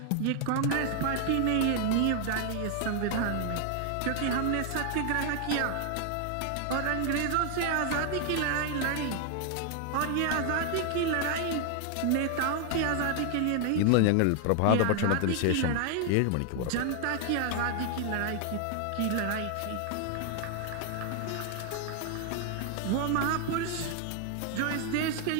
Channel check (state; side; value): different; both; correlation 0.00